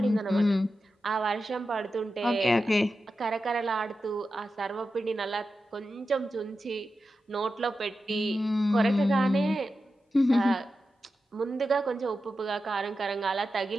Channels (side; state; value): both; normal; correlation 0.91